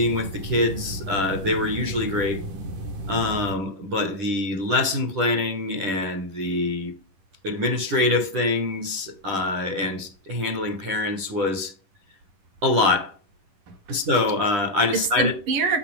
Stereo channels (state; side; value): late; left; 10 ms